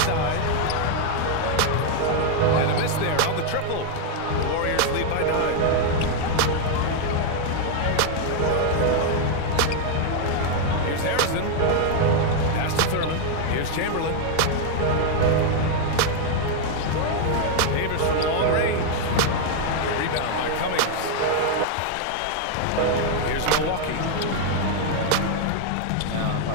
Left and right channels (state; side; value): different; both; correlation 0.00